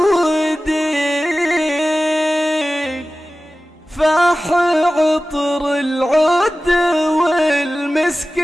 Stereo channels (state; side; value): normal; both; correlation 0.96